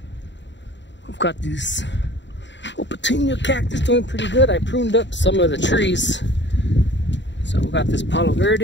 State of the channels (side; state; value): right; late; 0.52 ms